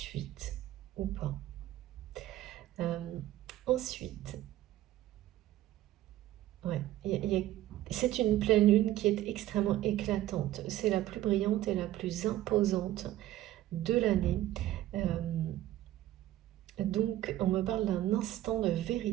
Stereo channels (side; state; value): left; quieter; 14.2 dB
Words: ou pas. Ensuite, ouais, c'est une pleine lune qui est extrêmement éclatante. C'est la plus brillante et la plus imposante de l'année. Donc, on me parle d'un instant de